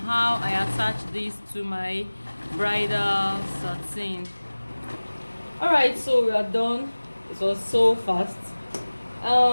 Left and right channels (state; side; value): inverted; both; correlation -1.00